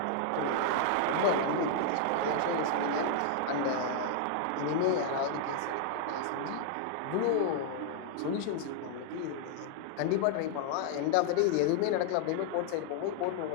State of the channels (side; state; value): both; different; correlation 0.00